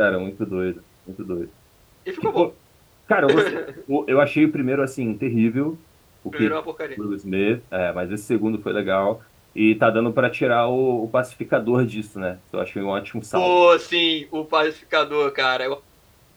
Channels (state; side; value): identical; both; correlation 1.00